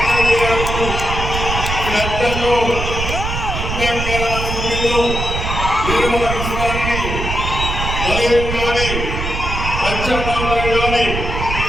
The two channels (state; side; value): noise; right; rumble, 4 dB below the sound